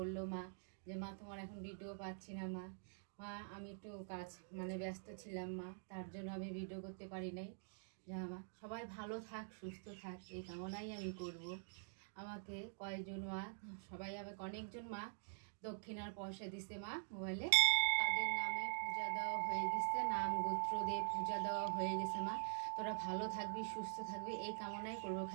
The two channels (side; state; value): left; silent; digital silence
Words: মা যে মা তোমার এখন ভিডিও পাচ্ছি না মা। মা আমি একটু কাজ ব্যস্ত ছিলাম মা, তার জন্য আমি ভিডিও করতে পারি নাই। যা মা সবাই ভালো থাক, সুস্থ থাক, এই কামনাই আমি করব। আমাকে কয়েকজন মা, সবাই আমাকে অনেকজন মা দক্ষিণার পয়সা দিছে মা মোবাইলে, তাদের নামে পূজা দেওয়া হয়ে গেছে, নাম গোত্র দিয়ে পূজা দেওয়া হয়ে গেছে মা। তোরা ভালো থাকবি, সুস্থ থাকবি, এই কামনাই করবো।